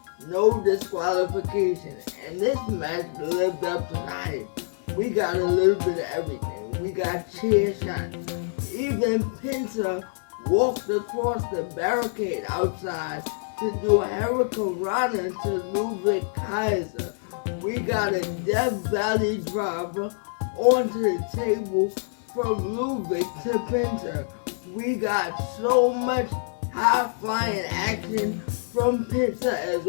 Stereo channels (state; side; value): silent; right; 61 dB below the other